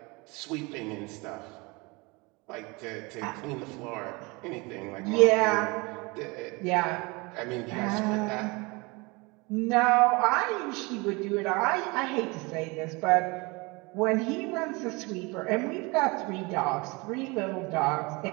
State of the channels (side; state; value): left; quieter; 26.2 dB